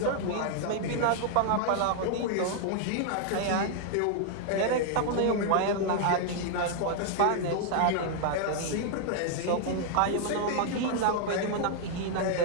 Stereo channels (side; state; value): both; different; correlation -0.01